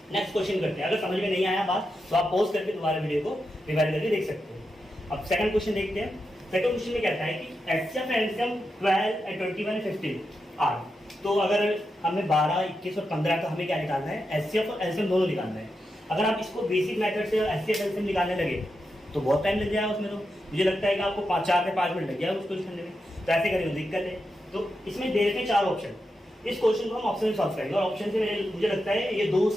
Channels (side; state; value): both; normal; correlation 0.87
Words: नेक्स्ट क्वेश्चन करते हैं। अगर समझ में नहीं आया बात तो आप पॉज करके दोबारा वीडियो को रिवाइज करके देख सकते हैं। अब सेकंड क्वेश्चन देखते हैं। सेकंड क्वेश्चन में कहता है कि HCF and LCM 12 and 21 and 15 are. तो अगर हमें 12, 21 और 15 का हमें क्या निकालना है, HCF और LCM दोनों निकालना है। अगर आप इसको बेसिक मेथड से HCF LCM निकालने लगे तो बहुत टाइम लग जाएगा उसमें। तो मुझे लगता है कि आपको 4 से 5 मिनट लग जाएगा उसको करने में। तो ऐसे करेंगे, दिक्कत है। तो इसमें दे रखे 4 ऑप्शन, इस क्वेश्चन को हम ऑप्शन से सॉल्व करेंगे और ऑप्शन से मुझे लगता है ये 2